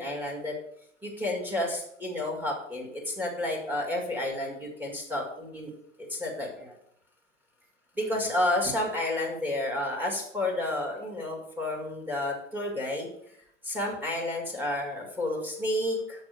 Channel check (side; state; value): both; normal; correlation 0.46